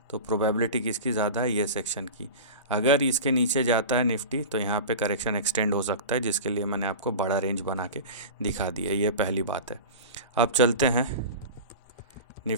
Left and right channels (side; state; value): both; inverted; correlation -0.30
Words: तो प्रोबेबिलिटी किसकी ज़्यादा है, ये सेक्शन की। अगर इसके नीचे जाता है निफ्टी तो यहाँ पे करेक्शन एक्सटेंड हो सकता है, जिसके लिए मैंने आपको बड़ा रेंज बना के दिखा दिया, ये पहली बात है। अब चलते हैं